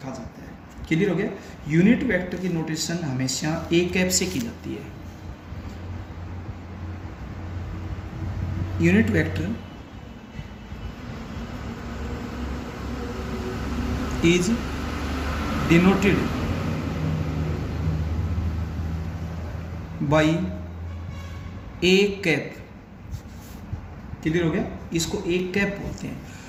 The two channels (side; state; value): both; identical; correlation 1.00